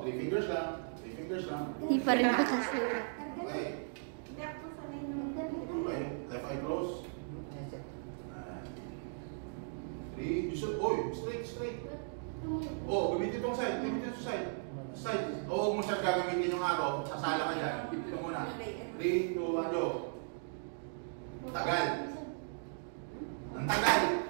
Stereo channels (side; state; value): left; silent; digital silence